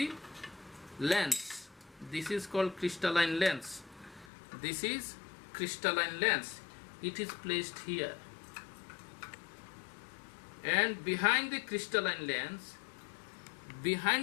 lens. This is called crystalline lens. This is crystalline lens. It is placed here, and behind the crystalline lens, this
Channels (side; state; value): right; drops out; at 4.3 s